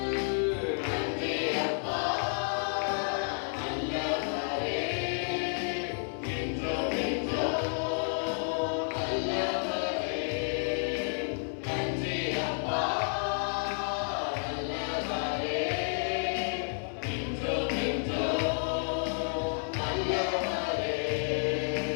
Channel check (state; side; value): silent; right; 57 dB below the other